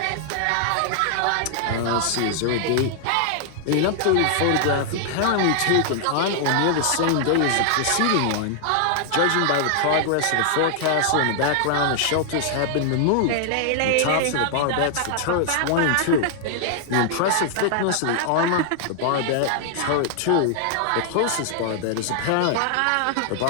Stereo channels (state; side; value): different; both; correlation -0.01